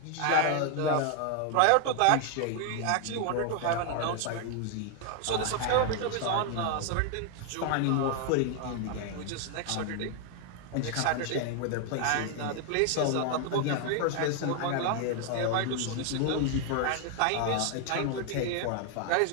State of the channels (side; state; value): both; different; correlation 0.00